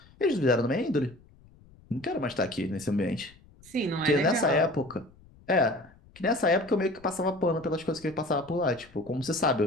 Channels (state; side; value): noise; left; rumble, 26 dB below the sound